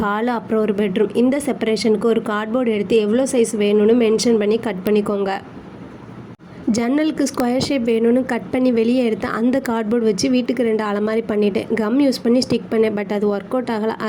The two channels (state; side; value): identical; both; correlation 1.00